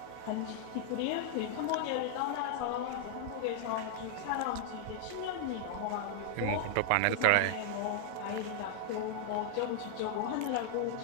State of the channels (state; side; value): different; both; correlation 0.00